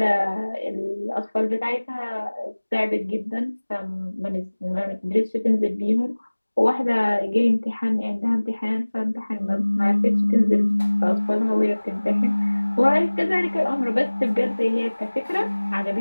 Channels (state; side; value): inverted; both; correlation -1.00